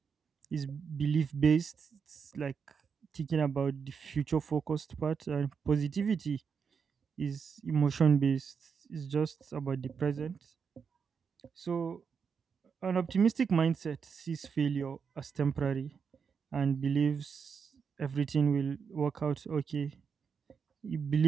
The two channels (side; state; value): left; quieter; 6.2 dB